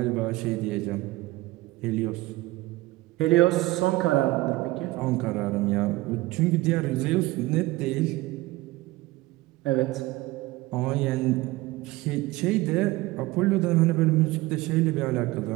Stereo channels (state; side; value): quieter; left; 19.6 dB